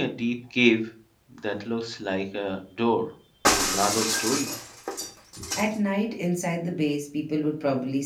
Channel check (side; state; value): both; identical; correlation 1.00